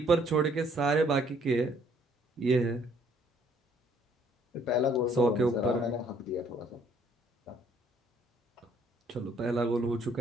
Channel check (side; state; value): both; normal; correlation 0.63